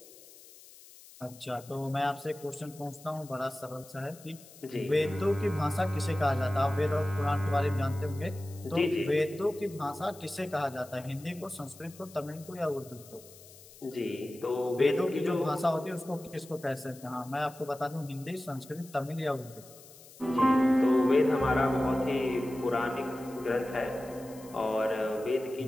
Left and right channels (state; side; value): noise; left; hiss, 21 dB below the sound